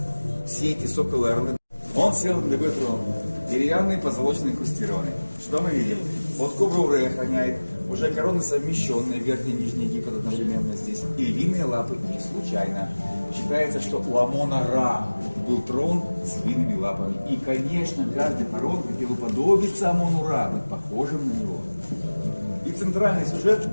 Все эти соколы орлы. Он сел на такой трон, деревянный, позолоченный, инкрустированный. Что мы видим? Вот кобру Ре охраняет, уже короны совмещенные, верхний и нижний Египет одновременно здесь. И львиные лапы не случайно. Считается, что у Амона-Ра был трон с львиными лапами. И, конечно, каждый фараон хотел уподобиться Амону-Ра, быть похожим на него. И центральный сюжет,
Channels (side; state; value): both; inverted; correlation -1.00